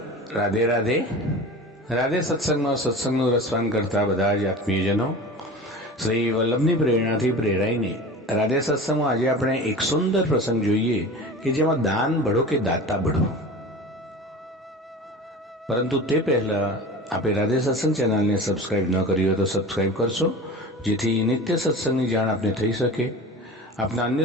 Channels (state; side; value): normal; both; correlation 0.35